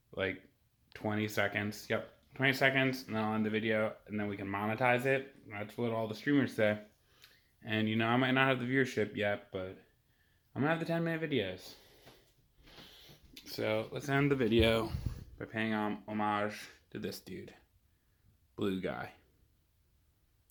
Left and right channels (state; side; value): identical; both; correlation 1.00